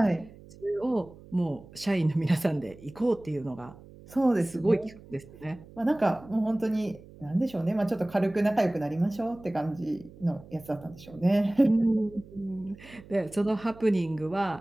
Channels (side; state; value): right; noise; hum, 20 dB below the sound